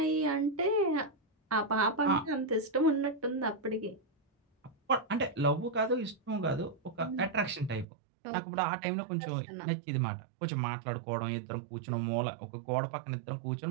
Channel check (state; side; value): drops out; left; at 7.9 s